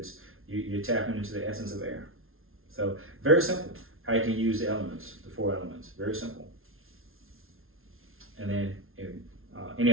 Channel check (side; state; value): left; late; 0.61 ms